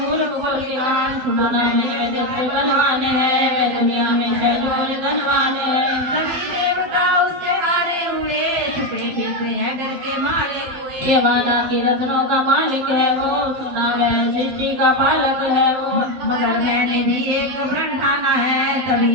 को ज्ञान। सुनाना मेरे दिल पे बलवान है, वे दुनिया में शैलोर धनवान है। सभी देवता उससे हारे हुए, छुपे फिरते हैं डर के मारे हुए। ये वाला की रत्नों का मालिक है वो, सुना मैं सृष्टि का पालक है वो। मगर मैंने भी एक प्रण ठाना है,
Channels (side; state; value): left; late; 12 ms